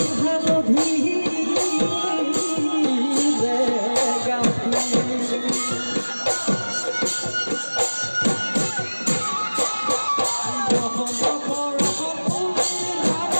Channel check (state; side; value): inverted; both; correlation -1.00